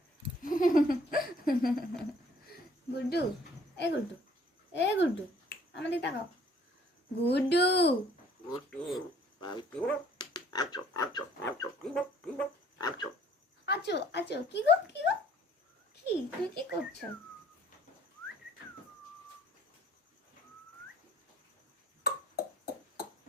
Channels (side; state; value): both; normal; correlation 0.57